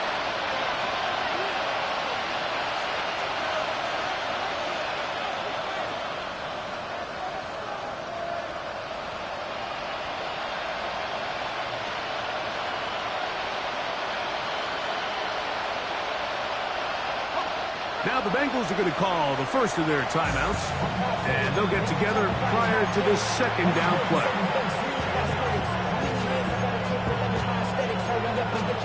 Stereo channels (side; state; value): both; identical; correlation 1.00